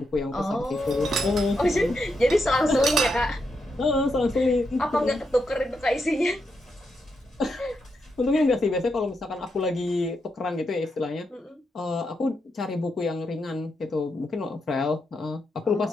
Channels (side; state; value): both; normal; correlation 0.83